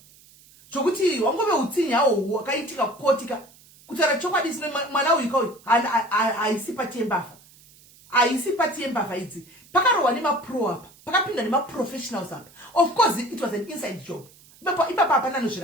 zvokuti wangove utsinye hawo hwakaitika kukotika kutaura chokwadi sine mwana uyu kauyu haisi pati yembavha haisi pati yembavha idzi pakarohwa nemapro apa pakapinda nemaprofessionals apa. Of course it was an inside job ipapa hapana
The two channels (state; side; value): noise; right; hiss, 26 dB below the sound